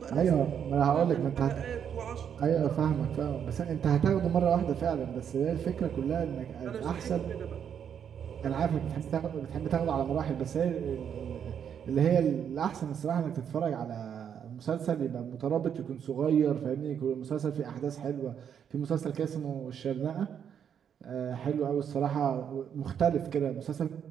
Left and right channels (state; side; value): quieter; left; 8.3 dB